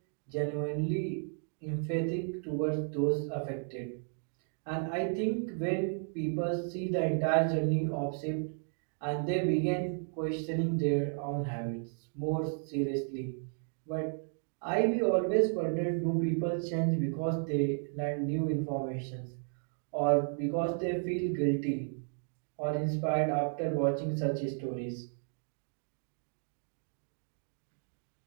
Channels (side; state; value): left; silent; 55 dB below the other